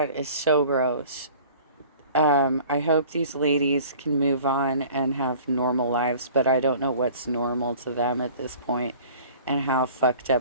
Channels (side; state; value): both; inverted; correlation -0.46